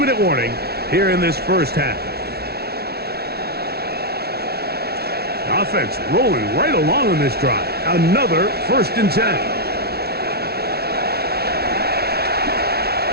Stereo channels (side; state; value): left; late; 0.46 ms